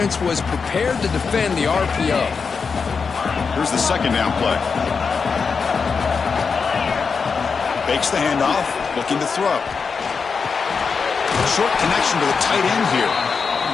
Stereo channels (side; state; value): right; quieter; 5.4 dB